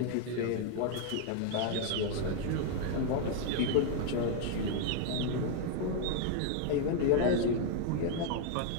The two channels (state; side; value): different; both; correlation 0.00